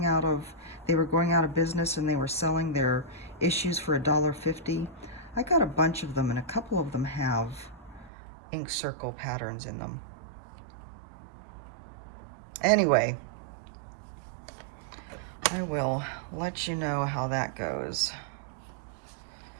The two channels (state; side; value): drops out; left; at 8.1 s